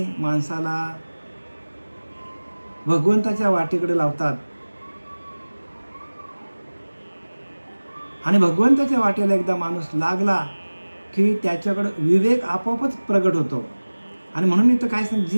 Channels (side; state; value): both; inverted; correlation -1.00